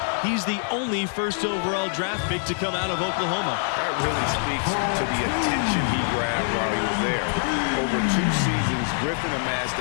he's the only first overall draft pick to come out of Oklahoma. That really speaks to the attention he grabbed while he was there. Over 2 seasons,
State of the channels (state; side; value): silent; right; 62 dB below the other